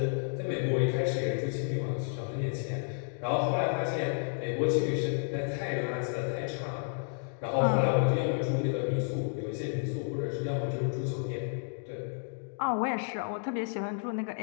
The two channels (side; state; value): right; silent; digital silence